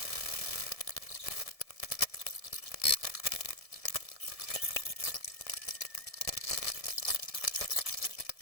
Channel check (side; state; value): right; late; 1.7 ms